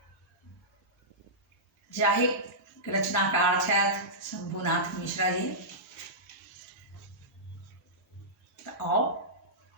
जाहि रचनाकार छथि शंभुनाथ मिश्रा जी। तो आओ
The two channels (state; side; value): normal; both; correlation -0.15